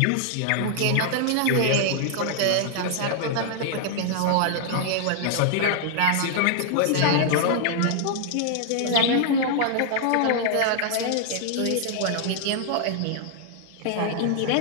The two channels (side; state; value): both; different; correlation -0.01